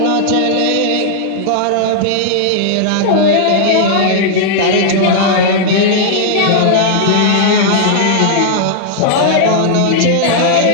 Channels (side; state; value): both; different; correlation -0.01